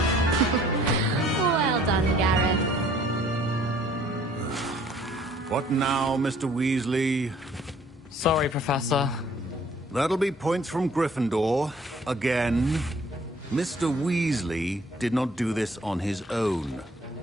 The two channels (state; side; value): normal; both; correlation 0.58